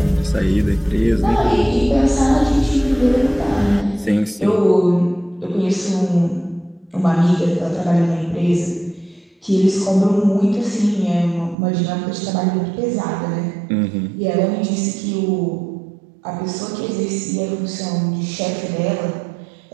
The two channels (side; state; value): left; drops out; at 11.6 s